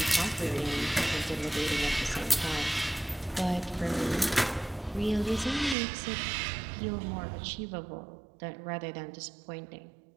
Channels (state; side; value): drops out; left; at 5.8 s